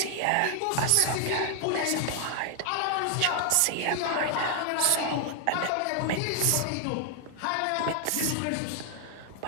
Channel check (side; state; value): both; different; correlation 0.00